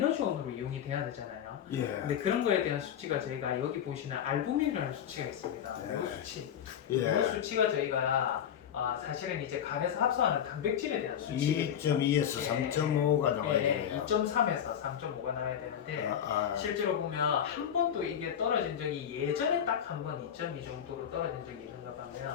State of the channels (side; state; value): right; quieter; 9.1 dB